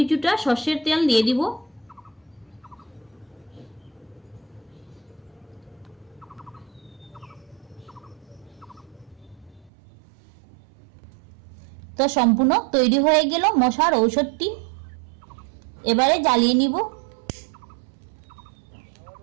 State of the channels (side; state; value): left; drops out; at 9.7 s